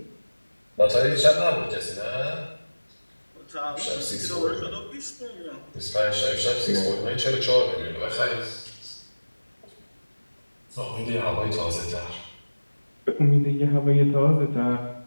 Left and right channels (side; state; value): both; inverted; correlation -1.00